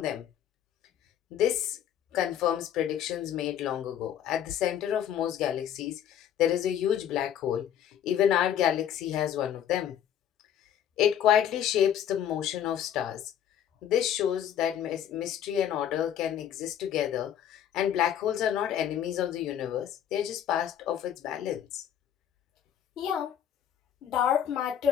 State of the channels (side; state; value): right; quieter; 10.0 dB